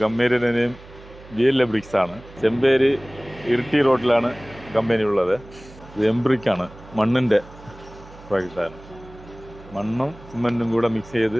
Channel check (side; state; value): right; noise; hum, 20 dB below the sound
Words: കമ്പനിയുടെ നെയിം VL ബ്രിക്സ് ആണ്. ചെമ്പേരി ഇരിട്ടി റോഡിലാണ് കമ്പനി ഉള്ളത്. ഇത് എംബ്രിക്കാണ്, മണ്ണിൻ്റെ പ്രോജക്റ്റാണ്. മണ്ണും സിമെൻറ്റും കൂടെ മിക്സ്